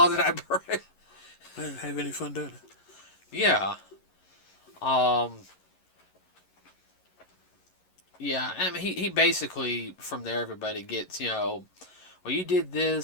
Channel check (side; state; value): right; late; 11 ms